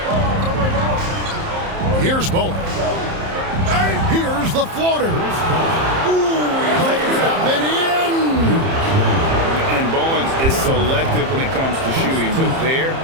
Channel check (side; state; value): left; late; 30 ms